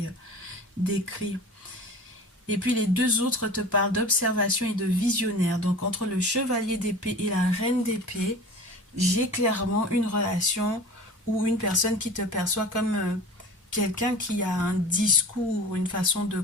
décrit. Et puis les deux autres te parlent d'observation et de visionnaire. Donc entre le chevalier d'épée et la reine d'épée, j'ai clairement une relation ou une personne qui te perçoit comme quelqu'un qui a un discours, une façon de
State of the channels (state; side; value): normal; both; correlation 0.38